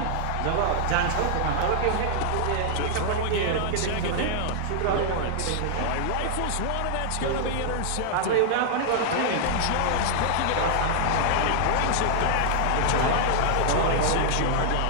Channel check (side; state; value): both; different; correlation -0.01